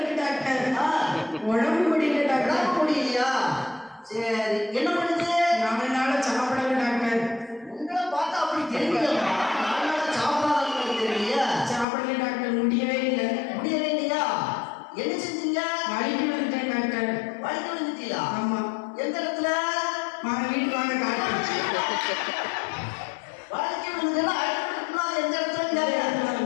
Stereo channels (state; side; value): drops out; right; at 11.9 s